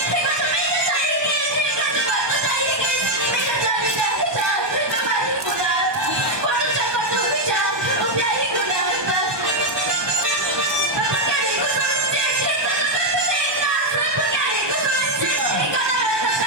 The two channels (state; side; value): late; left; 1.2 ms